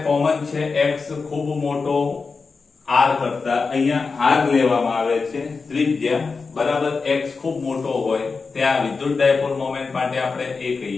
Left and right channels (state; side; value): quieter; right; 4.6 dB